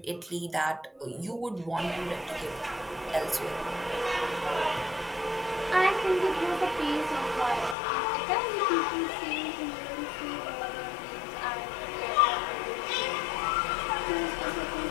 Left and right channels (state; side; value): drops out; right; at 7.8 s